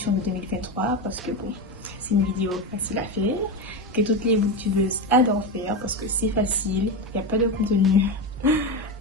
de 2023 parce que bon, c'est une vidéo facile à faire, que toutes les youtubeuses adorent faire parce que c'est facile, il n'y a pas de contenu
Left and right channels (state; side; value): normal; both; correlation 0.16